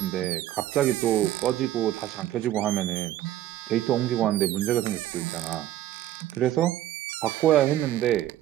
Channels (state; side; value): quieter; left; 13.3 dB